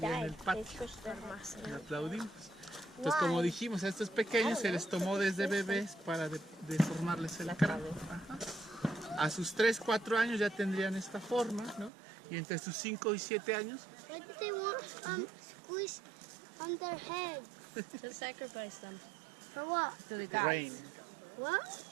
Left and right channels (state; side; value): drops out; left; at 11.9 s